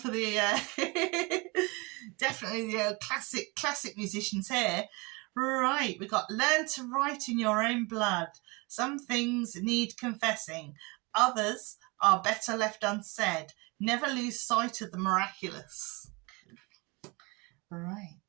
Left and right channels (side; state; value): left; quieter; 27.2 dB